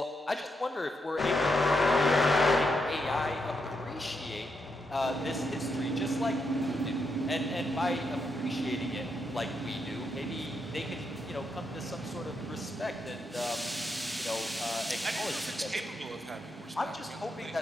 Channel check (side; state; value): both; normal; correlation 0.81